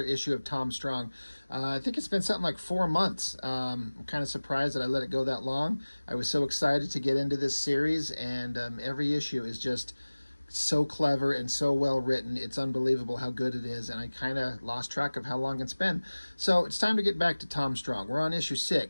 issue of Tom Strong. I think it's been something like 4 months. I'm kind of surprised that I let it go that long. I was so excited to get into this series, and every issue is just so clever and so well written. It's unbelievable how good it is, and I kind of lost track of how long it's been. So it's time to get back to Tom Strong. We're on issue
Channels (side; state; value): both; inverted; correlation -1.00